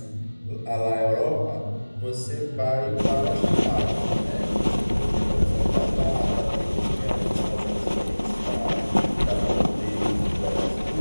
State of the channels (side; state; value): both; inverted; correlation -1.00